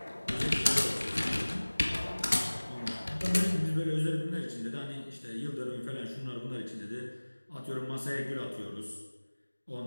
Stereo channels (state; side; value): inverted; both; correlation -1.00